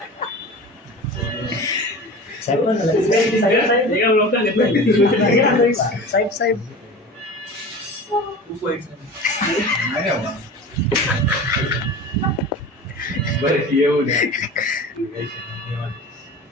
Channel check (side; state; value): both; normal; correlation 0.35